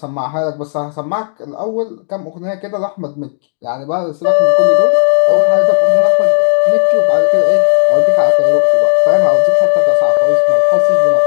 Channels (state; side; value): silent; right; 65 dB below the other